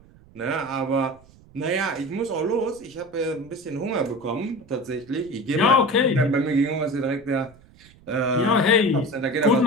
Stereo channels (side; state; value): right; noise; rumble, 26 dB below the sound